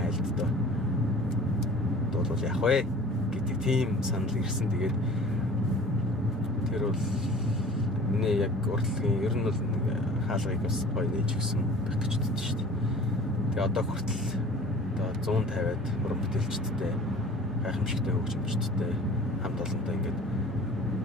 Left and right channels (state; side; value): normal; both; correlation 0.44